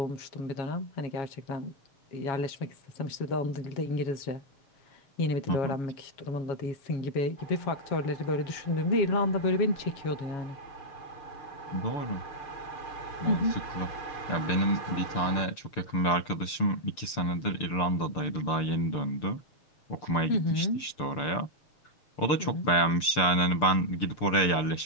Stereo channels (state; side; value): late; right; 6.8 ms